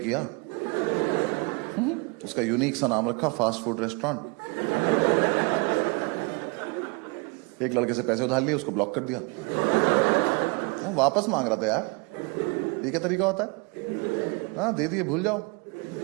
उसका यूनिक सा नाम रखा फास्ट फूड रेस्टोरेंट। एक लड़के से पैसे उधार लिए, उसको ब्लॉक कर दिया। वो वापस मांग रहा था यार, ये क्या तरीका होता है? हाँ दे दिए, भूल जाओ।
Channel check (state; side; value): quieter; left; 29.4 dB